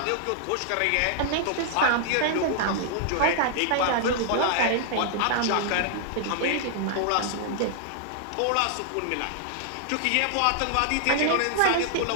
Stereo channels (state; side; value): different; both; correlation -0.01